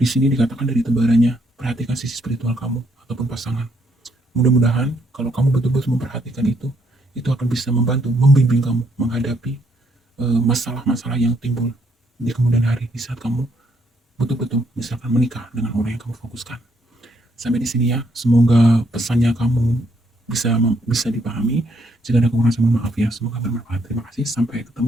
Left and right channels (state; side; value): normal; both; correlation 0.72